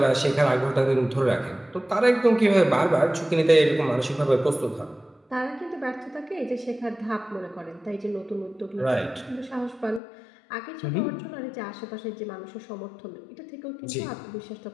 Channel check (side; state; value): right; drops out; at 10.0 s